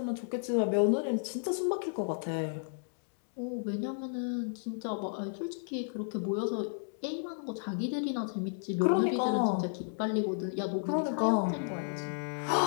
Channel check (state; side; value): silent; right; digital silence